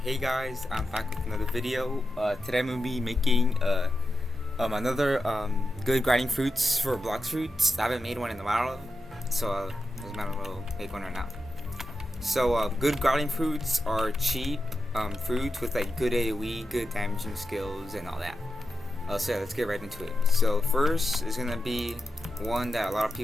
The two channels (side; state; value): both; normal; correlation 0.89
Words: hey guys, I'm back with another video. Today I'm going to be making another good grinding fruits for Blox fruits. I haven't made one in a while, so I might as well make one right now. So good grinding fruits are cheap fruits with like good AoE, good damaging skills, and all that. So yeah, let's get right into it. So first is going to be one that a lot of